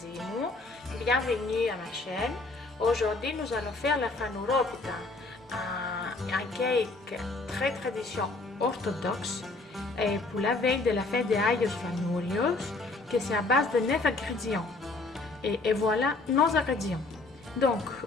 μου. Bienvenue à ma chaîne. Aujourd'hui, nous allons faire la fanoropita, un cake très tradition orthodoxe pour la veille de la fête des Ayos Fanurios, que c'est à base de 9 ingrédients. Et voilà nos ingrédients. Donc,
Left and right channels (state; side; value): quieter; right; 3.4 dB